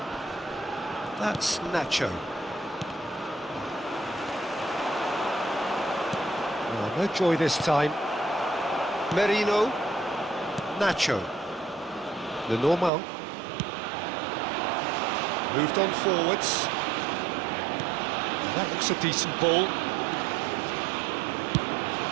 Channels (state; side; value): drops out; left; at 12.9 s